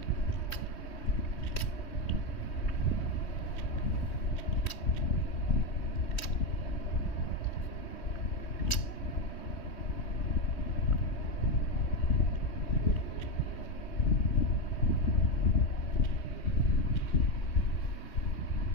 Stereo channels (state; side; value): late; right; 3.1 ms